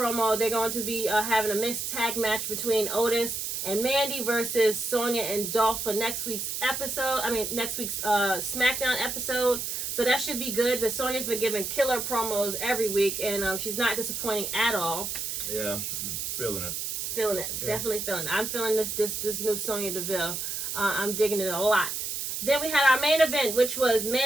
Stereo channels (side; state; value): right; noise; hiss, 3 dB below the sound